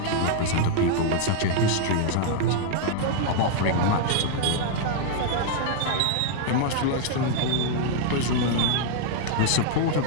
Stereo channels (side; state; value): both; different; correlation 0.00